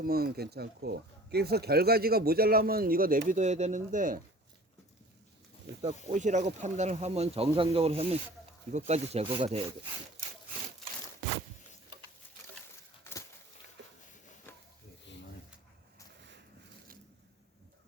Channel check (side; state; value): both; normal; correlation 0.46